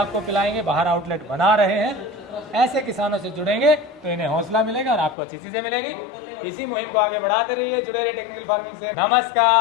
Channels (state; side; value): drops out; right; at 5.2 s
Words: पिलाएंगे, बाहर आउटलेट बना रहे हैं। ऐसे किसानों से जुड़ेंगे तो इन्हें हौसला मिलेगा और आपको अच्छी चीज़ें मिलेगी। इसी मुहिम को आगे बढ़ाते रहिए। जुड़े रहिए टेक्निकल फार्मिंग से।